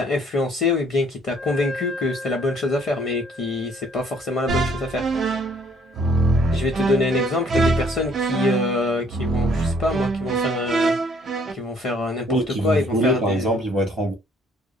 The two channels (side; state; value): both; normal; correlation 0.62